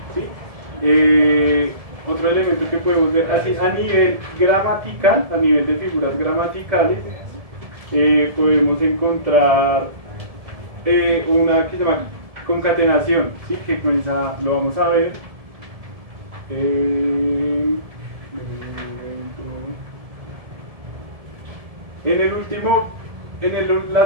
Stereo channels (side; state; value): left; late; 1.7 ms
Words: ¿sí? Otro elemento que podemos ver así a nivel gramatical, a nivel de figuras gramaticales, podemos encontrar una que se llama concatenación, ¿sí? Que comienza, lo vamos a ver.